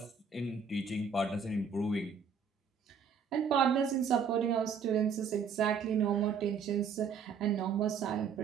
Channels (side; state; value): left; quieter; 6.2 dB